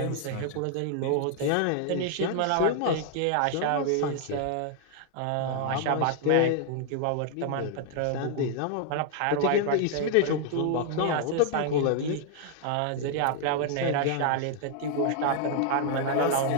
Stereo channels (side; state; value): both; different; correlation 0.00